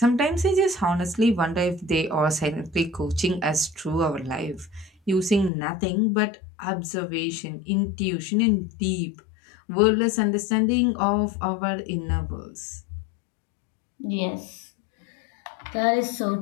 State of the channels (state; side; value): drops out; right; at 5.5 s